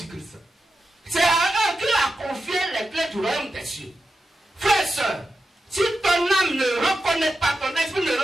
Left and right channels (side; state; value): both; normal; correlation 0.90